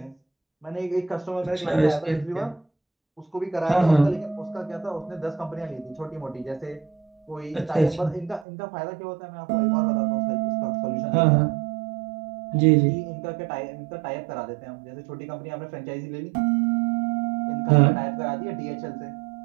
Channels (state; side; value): drops out; left; at 8.5 s